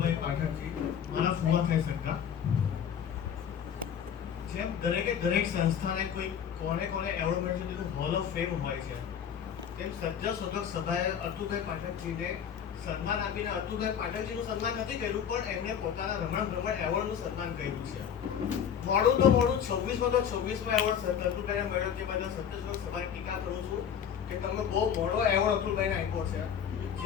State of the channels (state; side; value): quieter; right; 8.3 dB